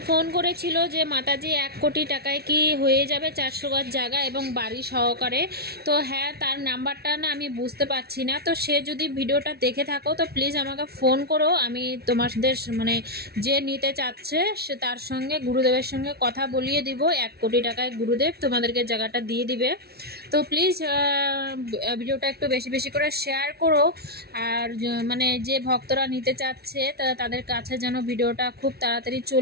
ফোন করেছিল যে মাতাজি 1 কোটি টাকায় কি হয়ে যাবে 400 গজ জায়গা এবং বাড়ি সহকারে। তো হ্যাঁ, তার নাম্বারটা না আমি বুঝতে পারছি না, তো সে যদি ভিডিওটা দেখে থাকো তো প্লিজ আমাকে ফোন করো, আমি তোমাদের মানে যে নিতে চাচ্ছে সে তার সঙ্গে গুরুদেবের সঙ্গে কথা বলিয়ে দিব। 1 কোটি টাকায় গুরুদেব তোমাদেরকে জায়গাটা দিয়ে দিবে। তো প্লিজ ভিডিওটা একটু বেশি বেশি করে শেয়ার করো, আর মানে যে ভক্তরা নিতে চাচ্ছে তাদের কাছে যেন ভিডিওটা খুব তাড়াতাড়ি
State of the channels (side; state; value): left; late; 0.46 ms